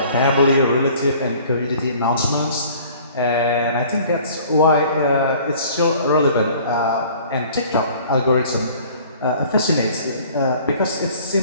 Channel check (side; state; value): both; inverted; correlation -0.51